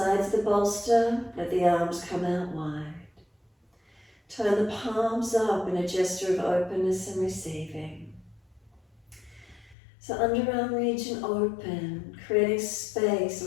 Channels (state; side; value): drops out; right; at 9.8 s